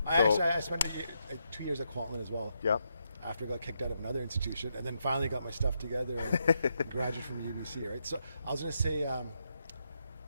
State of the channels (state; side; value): inverted; both; correlation -0.81